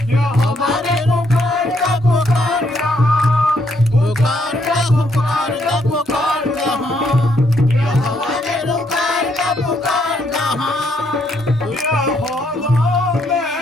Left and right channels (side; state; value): both; normal; correlation 0.73